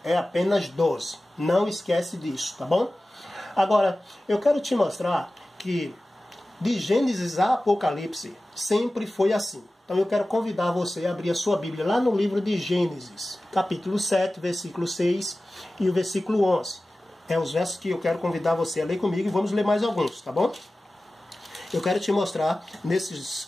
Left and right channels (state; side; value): normal; both; correlation 0.96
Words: É apenas 12. Não esquece disso, tá bom? Agora, eu quero te mostrar que de Gênesis a Apocalipse sempre foi assim. Então eu quero convidar você a abrir a sua Bíblia lá no livro de Gênesis, capítulo 7, versículo 6 e o versículo 11. É os versos que eu quero convidar você a ler comigo e vamos ler mais alguns, tá bom? Eu quero te mostrar